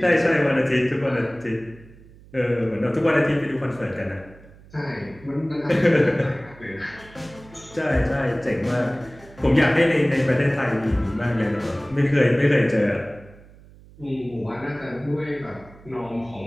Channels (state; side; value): noise; right; hum, 23 dB below the sound